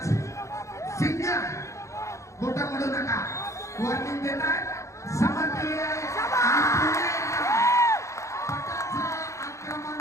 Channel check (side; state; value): right; late; 0.15 ms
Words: सिंग बोट मोडू नका. वॉर्निंग देतात. समजली आहे. पटाचं आक्रमण